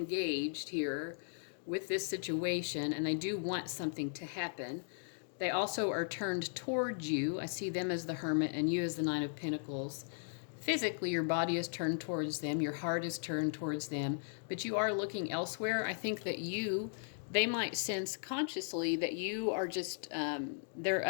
here with this situation, and they do want something to happen. They also are turned towards you. I see them as the Hermit and you as the Nine of Pentacles. Physically, your body is turned towards them. Your heart is turned towards them. But you are looking elsewhere. I think that they might sense consciously that you are just, there are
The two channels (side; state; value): right; silent; digital silence